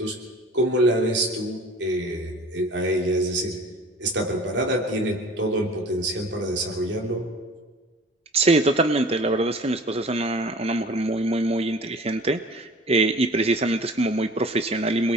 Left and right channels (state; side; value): normal; both; correlation 0.44